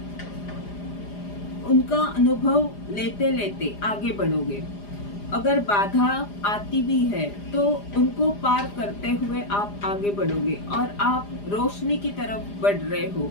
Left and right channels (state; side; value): late; right; 4.9 ms